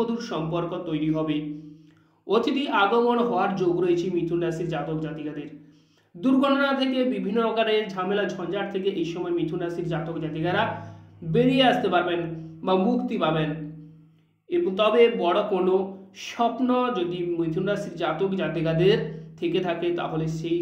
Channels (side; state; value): both; identical; correlation 1.00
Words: সম্পর্ক তৈরি হবে। অতিথি আগমন হওয়ার যোগ রয়েছে মিথুন রাশির জাতক জাতিকাদের। দুর্ঘটনা থেকে বিভিন্ন রকমের ঝামেলা ঝঞ্ঝাট থেকে এই সময় মিথুন রাশির জাতক জাতিকারা বেরিয়ে আসতে পারবেন বা মুক্তি পাবেন। এবং তবে বড় কোনো স্বপ্ন যদি মিথুন রাশির জাতক জাতিকাদের থেকে থাকে তাহলে